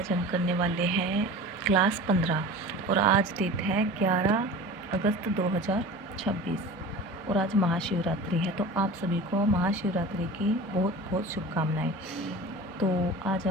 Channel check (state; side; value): normal; both; correlation 0.36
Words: हम करने वाले हैं क्लास 15 और आज डेट है 11 अगस्त 2026 और आज महाशिवरात्रि है। तो आप सभी को महाशिवरात्रि की बहुत बहुत शुभकामनाएं। तो आज